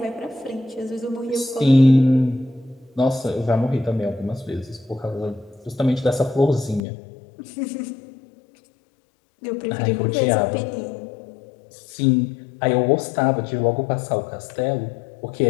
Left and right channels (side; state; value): right; drops out; at 6.8 s